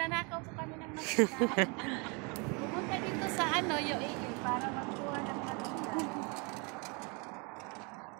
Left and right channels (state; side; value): quieter; left; 31.7 dB